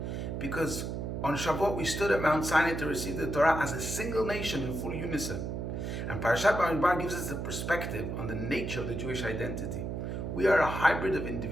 Because on Shavuot we stood at Mount Sinai to receive the Torah as a single nation in full unison. And Parashat Bamidbar gives us a perspective on the nature of the Jewish identity. We are a hybrid of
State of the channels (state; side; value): noise; right; hum, 4 dB below the sound